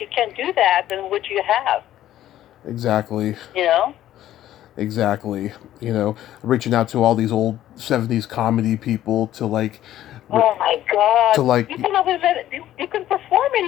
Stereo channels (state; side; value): quieter; right; 12.9 dB